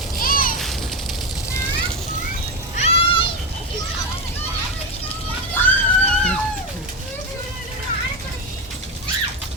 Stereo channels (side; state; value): both; normal; correlation 0.13